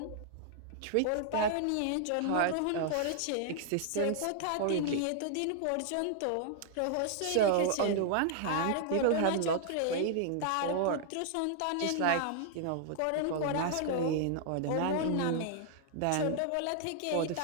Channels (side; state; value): both; different; correlation -0.01